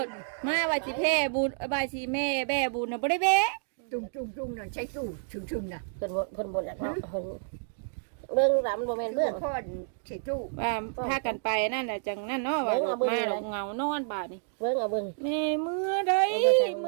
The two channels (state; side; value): silent; left; digital silence